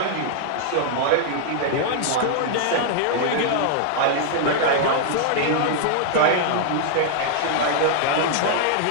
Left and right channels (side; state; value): both; different; correlation -0.01